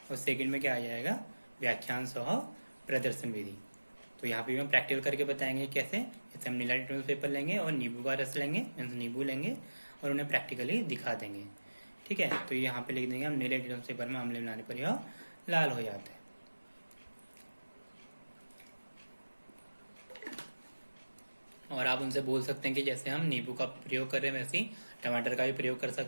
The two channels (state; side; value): inverted; both; correlation -1.00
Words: और सेकंड में क्या आ जाएगा, व्याख्यान सह प्रदर्शन विधि। तो यहाँ पे हम प्रैक्टिकल करके बताएंगे कैसे। जैसे हम नीला लिटमस पेपर लेंगे और नींबू का रस लेंगे, मीन्स नींबू लेंगे और उन्हें प्रैक्टिकली दिखा देंगे। ठीक है, तो यहाँ पे लिख देंगे हम नीले लिटमस पेपर में अम्ल मिलाने पर यह लाल हो जाता है। और आप उनसे बोल सकते हैं कि जैसे हम नींबू का प्रयोग कर रहे हैं वैसे ही टमाटर का भी प्रयोग कर